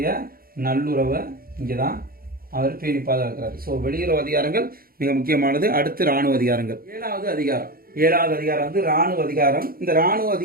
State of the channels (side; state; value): left; late; 0.43 ms